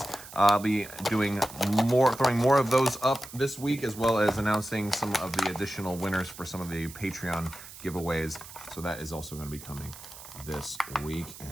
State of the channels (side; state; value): right; noise; hiss, 15 dB below the sound